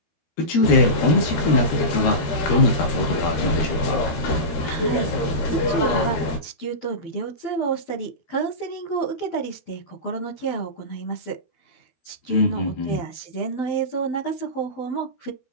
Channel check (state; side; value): late; right; 12 ms